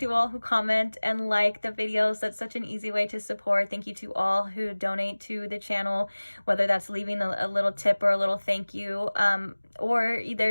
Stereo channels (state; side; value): inverted; both; correlation -1.00